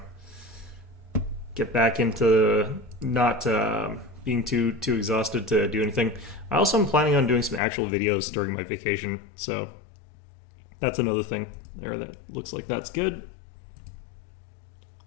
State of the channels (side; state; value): right; drops out; at 7.6 s